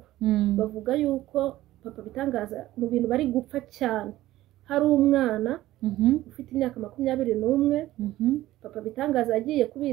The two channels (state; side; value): quieter; left; 15.5 dB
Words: bavuga yuko Papa Bitangaza mu bintu bari gupfa cyane hari umwana ufite imyaka 21 Papa Bitangaza yagiye